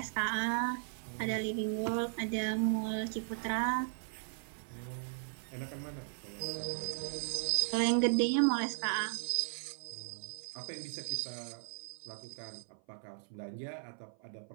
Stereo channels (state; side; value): silent; left; 53 dB below the other